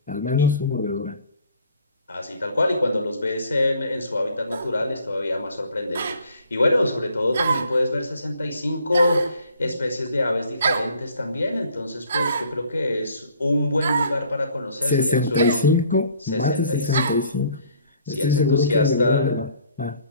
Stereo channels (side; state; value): both; inverted; correlation -0.57